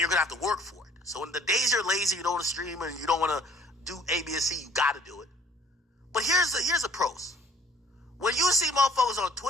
going to have to work for it. So in the days you're lazy, you don't want to stream and you don't want to do A, B, and C, you got to do it. But here's the pros. When you see motherfuckers on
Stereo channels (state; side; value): normal; both; correlation 0.55